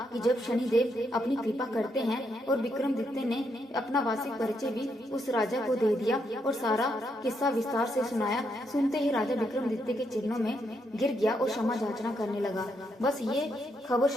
कि जब शनिदेव अपनी कृपा करते हैं, और विक्रमादित्य ने अपना वार्षिक परिचय भी उस राजा को दे दिया और सारा किस्सा विस्तार से सुनाया। सुनते ही राजा विक्रमादित्य के चरणों में गिर गया और क्षमा याचना करने लगा। बस ये खबर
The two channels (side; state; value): both; normal; correlation 0.78